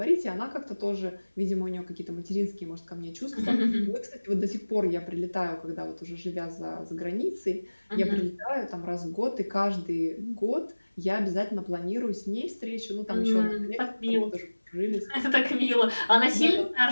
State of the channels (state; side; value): inverted; both; correlation -1.00